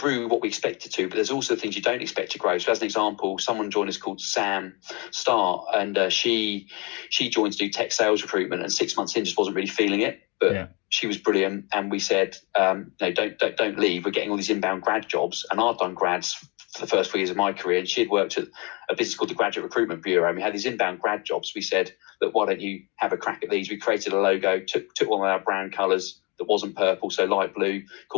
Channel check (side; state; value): right; quieter; 29.0 dB